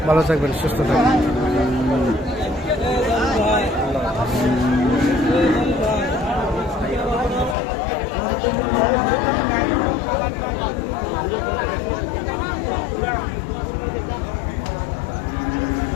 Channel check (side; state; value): right; drops out; at 7.6 s